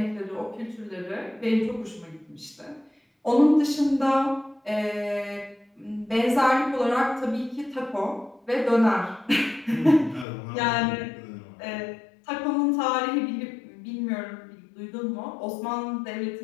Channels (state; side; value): drops out; right; at 10.2 s